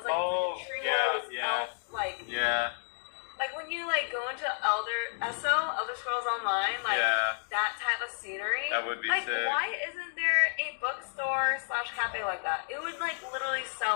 like it's like a tree house. Like when you like go into Elder Scrolls Online, like that type of scenery. That would be like, sick. why isn't there a bookstore / cafe like that? It would like literally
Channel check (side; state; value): right; silent; digital silence